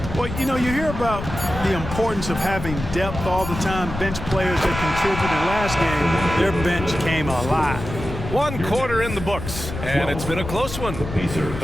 Well, you know, you hear about the importance of having depth all the time, bench players that contributed. Last game, their bench came alive. 1 quarter in the books, and it's been a close one.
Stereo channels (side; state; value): left; noise; rumble, 8 dB below the sound